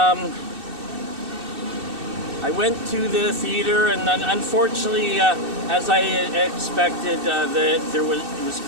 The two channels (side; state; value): left; late; 2.6 ms